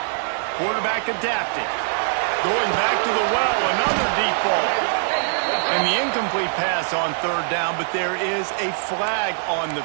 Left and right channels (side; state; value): left; silent; 58 dB below the other